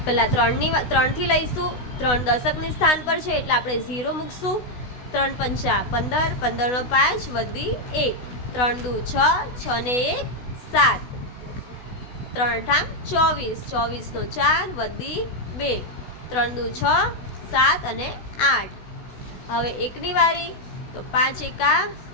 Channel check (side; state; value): right; late; 16 ms